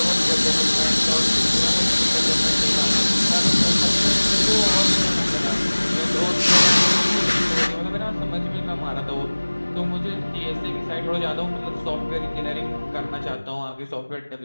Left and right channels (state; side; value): inverted; both; correlation -1.00